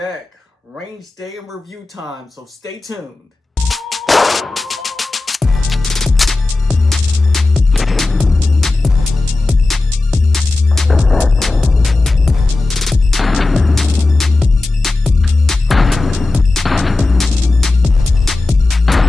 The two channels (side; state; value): right; quieter; 3.2 dB